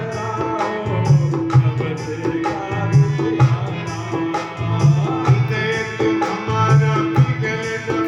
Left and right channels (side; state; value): both; identical; correlation 1.00